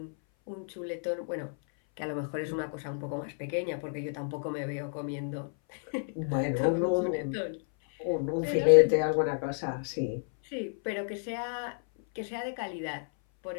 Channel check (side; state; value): right; silent; 57 dB below the other